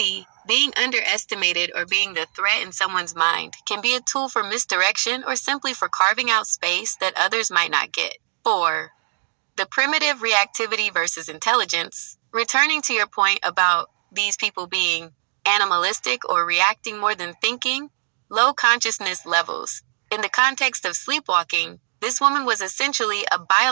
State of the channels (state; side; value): silent; left; digital silence